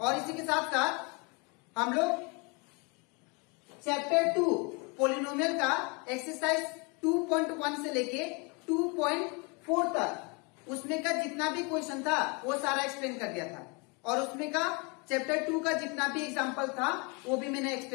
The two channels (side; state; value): right; quieter; 31.3 dB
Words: और इसी के साथ साथ हम लोग चैप्टर 2 पॉलिनोमियल का एक्सरसाइज 2.1 से लेके 2.4 तक उसमें का जितना भी क्वेश्चन था वो सारा एक्सप्लेन कर दिया था। और उसमें का चैप्टर 2 का जितना भी एग्जांपल था वो भी मैंने